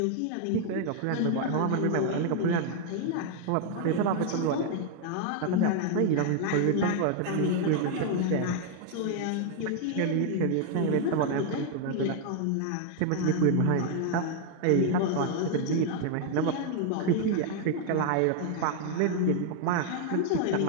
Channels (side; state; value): both; different; correlation 0.00